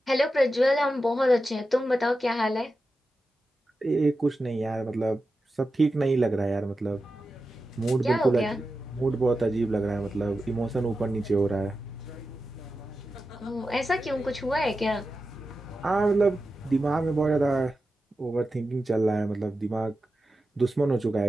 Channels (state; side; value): normal; both; correlation 0.91